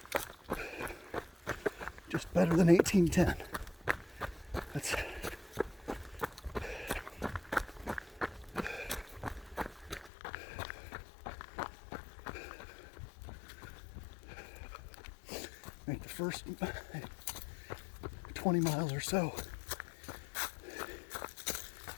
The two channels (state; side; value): drops out; right; at 10.1 s